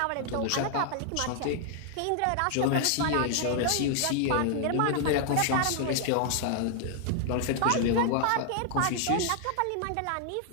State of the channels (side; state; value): both; different; correlation 0.00